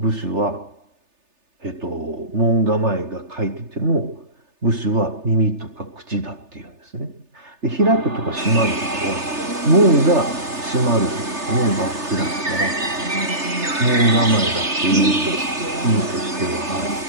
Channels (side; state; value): left; late; 3.3 ms